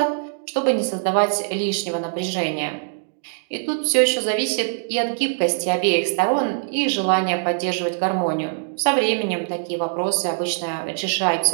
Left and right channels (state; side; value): silent; left; digital silence